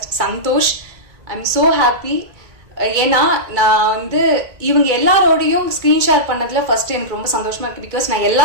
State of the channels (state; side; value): late; left; 2.2 ms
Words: Santhosh, I am so happy. ஏன்னா நான் வந்து இவங்க எல்லாரோடையும் ஸ்க்ரீன் ஷேர் பண்ணதில் ஃபர்ஸ்ட் எனக்கு ரொம்ப சந்தோஷமாக இருக்குது. பிகாஸ் நான்